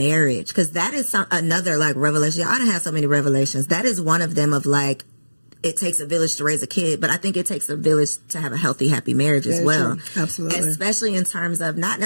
Because that is another, like, revelation. I done had so many revelations. That is one of them, of, like, it takes a village to raise a kid, but I think it takes a village to have a healthy, happy marriage as well. True. Absolutely. Especially in terms of not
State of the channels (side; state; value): both; inverted; correlation -1.00